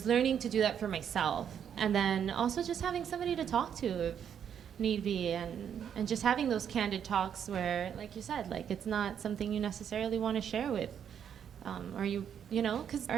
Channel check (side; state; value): left; quieter; 8.5 dB